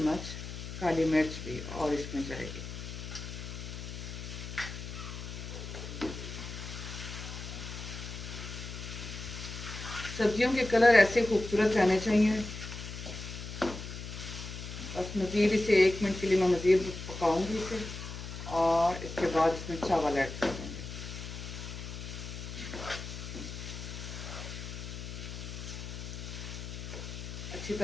काली मिर्च भी और इसमें जाएगी। सब्जियों के कलर ऐसे खूबसूरत रहने चाहिए। बस मज़ीद इसे 1 मिनट के लिए मैं मज़ीद पकाऊंगी इसे, और इसके बाद इसमें चावल ऐड कर देंगे। अच्छी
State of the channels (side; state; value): left; noise; hum, 8 dB below the sound